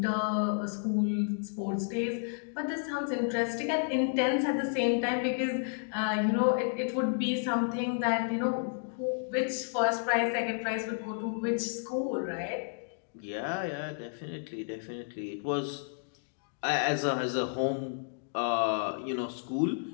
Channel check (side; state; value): right; silent; digital silence